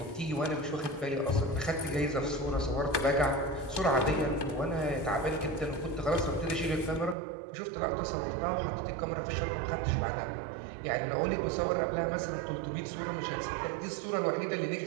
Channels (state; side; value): drops out; left; at 7.2 s